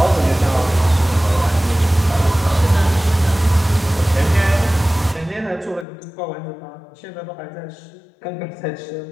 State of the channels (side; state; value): right; drops out; at 5.9 s